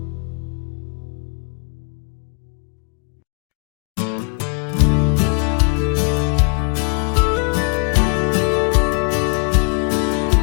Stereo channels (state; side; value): quieter; right; 36.8 dB